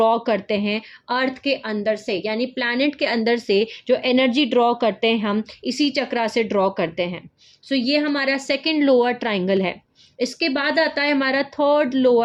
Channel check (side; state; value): both; identical; correlation 1.00